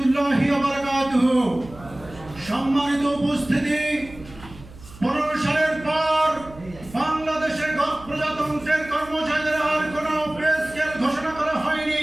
ওয়া বারাকাতুহু। সম্মানিত উপস্থিতি, 15 সালের পর বাংলাদেশের প্রজাতন্ত্রের কর্মচারীদের আর কোনো পে স্কেল ঘোষণা করা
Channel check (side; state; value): right; noise; hum, 19 dB below the sound